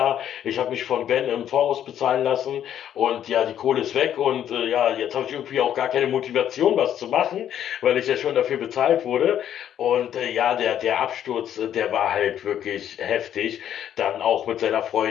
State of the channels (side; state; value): right; quieter; 10.3 dB